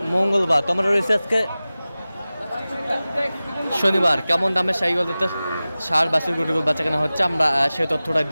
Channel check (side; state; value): both; inverted; correlation -0.97